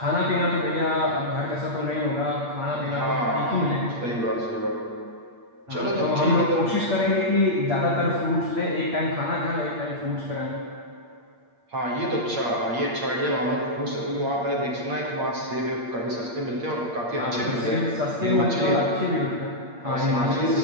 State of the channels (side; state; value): left; late; 8.6 ms